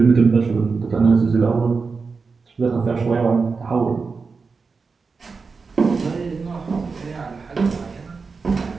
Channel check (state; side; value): quieter; left; 4.7 dB